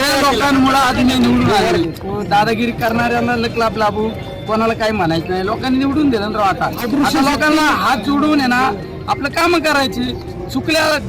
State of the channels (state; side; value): identical; both; correlation 1.00